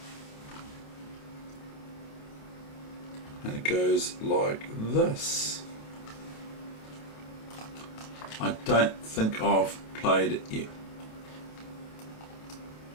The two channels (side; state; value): right; late; 28 ms